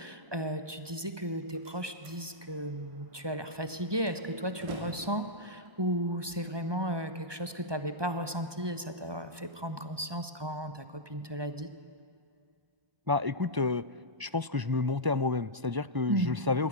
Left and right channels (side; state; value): left; late; 1.2 ms